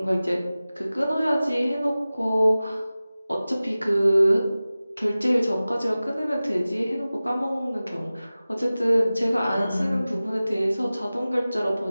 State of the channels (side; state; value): both; inverted; correlation -0.97